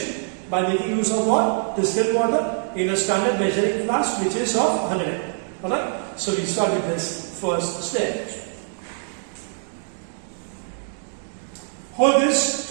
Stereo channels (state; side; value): silent; left; digital silence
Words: by making use of what? Distilled water in a standard measuring flask which is of 100 ml. Alright, so we start with this first step. Hold this